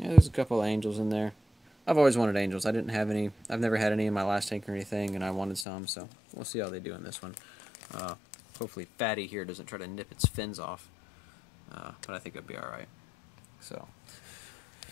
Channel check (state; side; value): drops out; right; at 5.7 s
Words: there's a couple of angels in there. I've always wanted angels. I didn't have any. I've never had any in my last tank or anything, and I wanted some, so we'll see how they do in this one. Hopefully Fatty here doesn't try to nip its fins off, but I think it'll be alright. So,